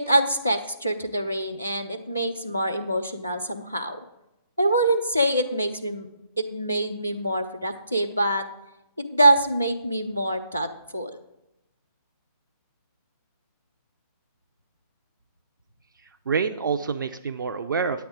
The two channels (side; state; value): both; inverted; correlation -0.74